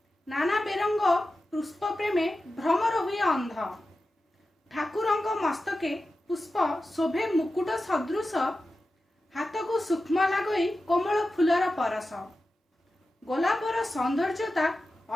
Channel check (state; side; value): normal; both; correlation 0.93